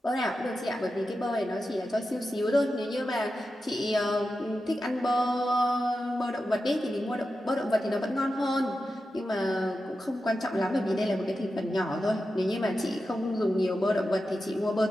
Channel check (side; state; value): both; normal; correlation 0.91